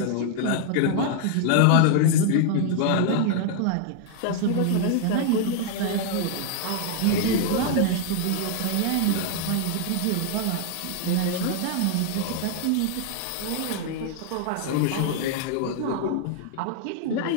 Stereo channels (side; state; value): both; different; correlation 0.00